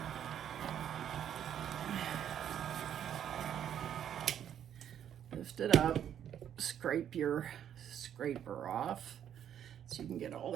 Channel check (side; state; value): left; quieter; 9.6 dB